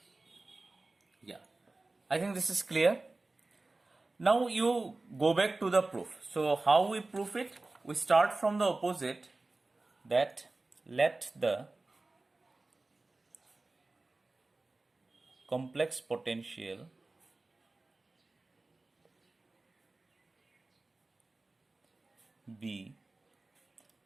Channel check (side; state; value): left; quieter; 3.2 dB